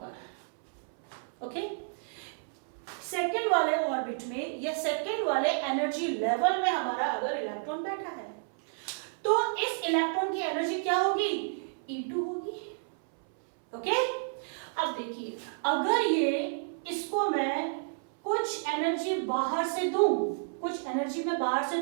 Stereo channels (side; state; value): left; silent; 57 dB below the other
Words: पर, ओके, सेकेंड वाले ऑर्बिट में या सेकेंड वाले एनर्जी लेवल में हमारा अगर इलेक्ट्रॉन बैठा है, तो इस इलेक्ट्रॉन की एनर्जी क्या होगी, E2 होगी। ओके, अब देखिए अगर ये इसको मैं कुछ एनर्जी बाहर से दूं, कुछ एनर्जी मैं बाहर से